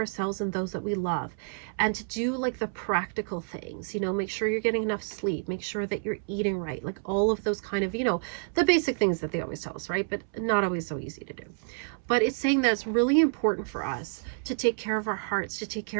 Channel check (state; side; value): silent; left; 59 dB below the other